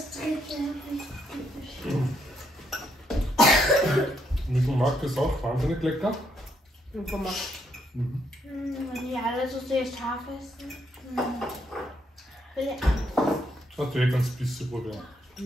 Mit dem Mark ist auch wahnsinnig lecker. Mie gomak. Wenn die alle so sehr scharf essen. Will ich Hast du eh ganz bisschen probieren.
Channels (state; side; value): normal; both; correlation 0.74